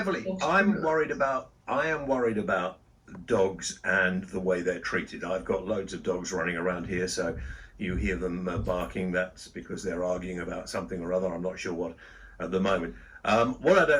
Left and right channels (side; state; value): both; identical; correlation 1.00